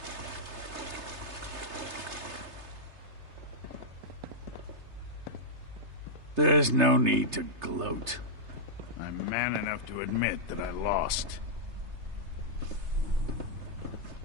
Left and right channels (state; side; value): late; left; 3.3 ms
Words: There's no need to gloat. I'm man enough to admit that I lost.